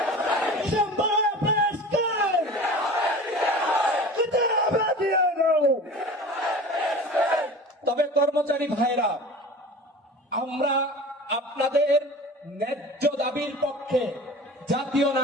তবে কর্মচারী ভাইরা, আমরা আপনাদের ন্যায্য দাবির পক্ষে জাতীয়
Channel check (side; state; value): both; normal; correlation 0.38